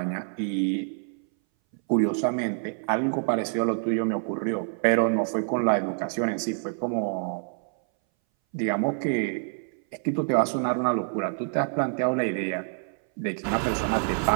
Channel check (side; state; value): left; silent; 59 dB below the other